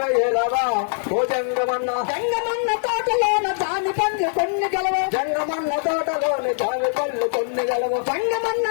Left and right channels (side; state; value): right; silent; digital silence